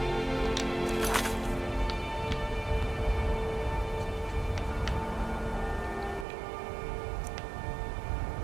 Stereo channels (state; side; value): drops out; left; at 6.2 s